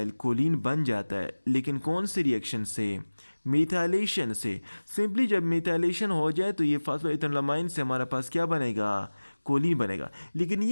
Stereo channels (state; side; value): inverted; both; correlation -1.00